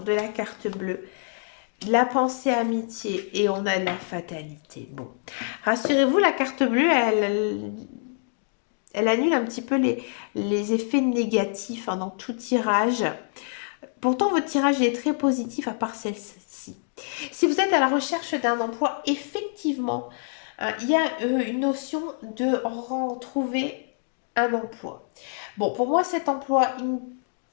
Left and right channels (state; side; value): silent; right; digital silence